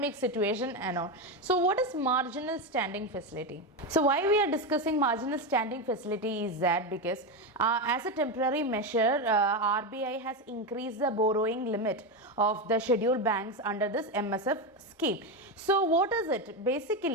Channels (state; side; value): normal; both; correlation 0.13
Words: situation and all. So what is marginal standing facility? So why we are discussing marginal standing facility is that because as a temporary measure, RBI has increased the borrowing limit of the scheduled banks under this MSF scheme. So what is it?